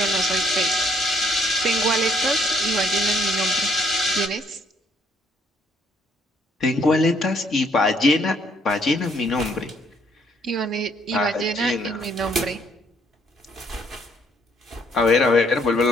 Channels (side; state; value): both; normal; correlation 0.67